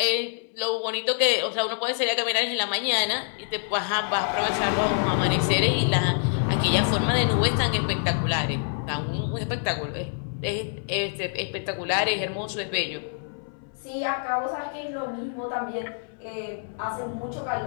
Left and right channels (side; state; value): right; silent; 61 dB below the other